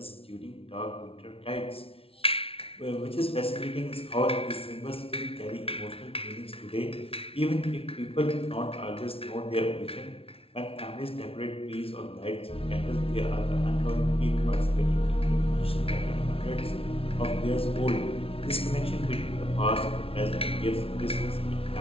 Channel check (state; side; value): late; right; 0.27 ms